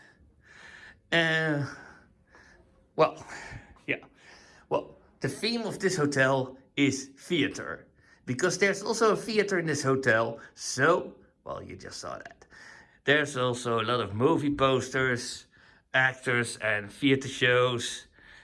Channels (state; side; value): identical; both; correlation 1.00